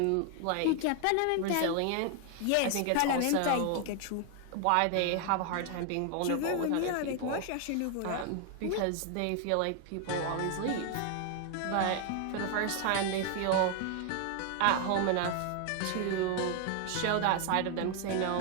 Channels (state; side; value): different; both; correlation 0.00